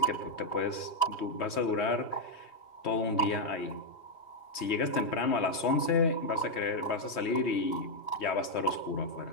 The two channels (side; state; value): right; late; 3.2 ms